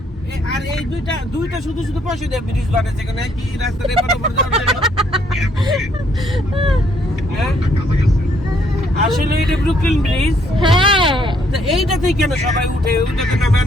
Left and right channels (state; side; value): normal; both; correlation 0.68